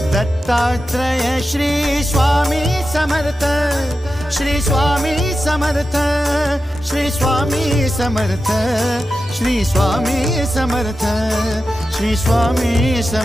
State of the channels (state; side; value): normal; both; correlation 0.91